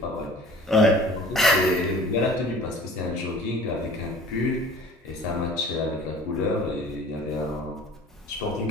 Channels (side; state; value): both; normal; correlation 0.47